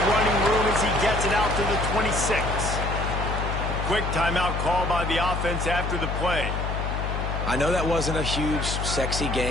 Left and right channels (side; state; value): left; noise; hum, 3 dB below the sound